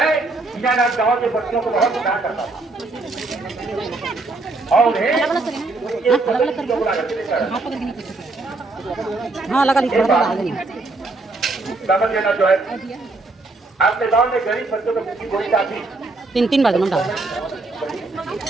विजयनाथ गांव के बच्चों को बहुत प्यार करता था और उन्हें ब्राह्मण जो है अपने गांव में गरीब बच्चों को गोली काफी 3 बार जन्म डाला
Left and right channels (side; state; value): left; quieter; 3.3 dB